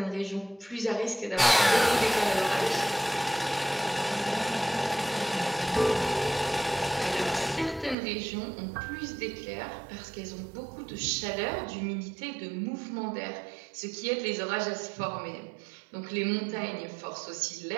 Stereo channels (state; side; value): drops out; left; at 8.0 s